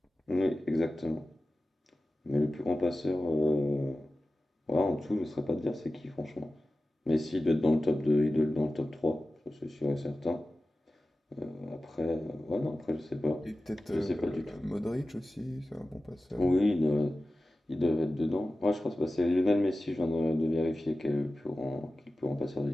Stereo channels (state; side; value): normal; both; correlation 0.94